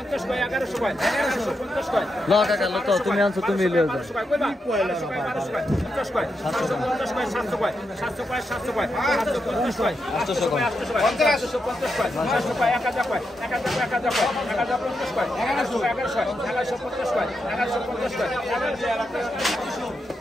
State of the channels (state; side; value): normal; both; correlation 0.85